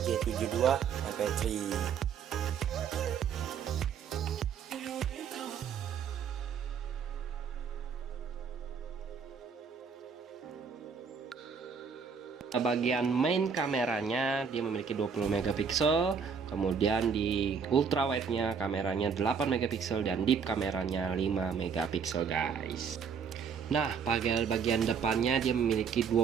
G72 MP3. Bagian main kameranya dia memiliki 20 megapiksel, kemudian di ultrawide-nya kameranya 8 megapiksel dan deep kameranya 5 megapiksel guys. Nah, bagian depannya dia memiliki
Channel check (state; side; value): quieter; left; 6.3 dB